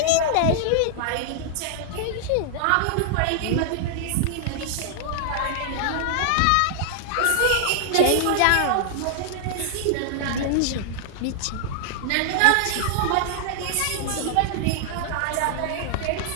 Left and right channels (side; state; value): both; different; correlation -0.01